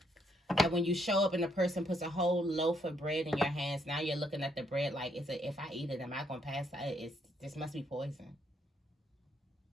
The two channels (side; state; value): both; normal; correlation 0.73